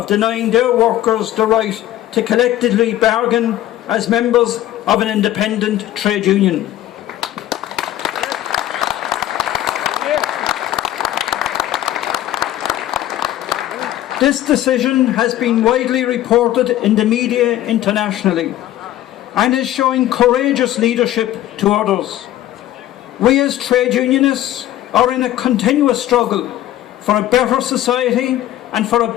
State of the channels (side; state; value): right; quieter; 13.5 dB